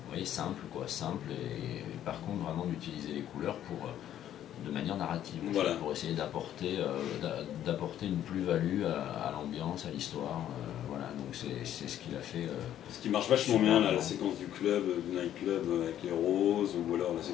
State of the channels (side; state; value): right; quieter; 11.3 dB